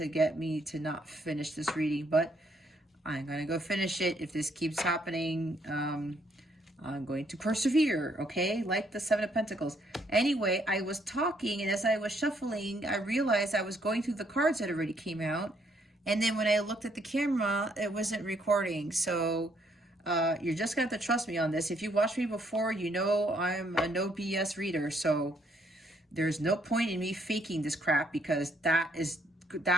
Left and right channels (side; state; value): both; normal; correlation 0.70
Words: get me to not finish this reading, but I'm going to go finish it. If this keeps happening, I'm going to persevere, okay? Like the Seven of Pentacles. Anyway, I was talking, and as I was shuffling, I realized I was going through the cards that already came out. And then when I looked at the camera, it wasn't recording. So you're just going to have to trust me on this. If you watched me before, you know I'm a no BS reader. So there's no point in me faking this crap, because that